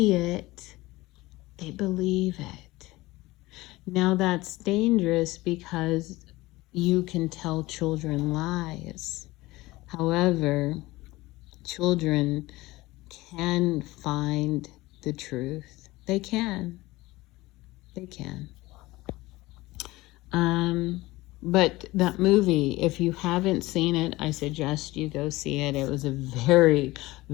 it, they believe it. Now that's dangerous, because you can tell children lies. However, children can find the truth. They can. But that movie, if you haven't seen it, I suggest you go see it. It was a very,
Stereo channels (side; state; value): right; quieter; 19.6 dB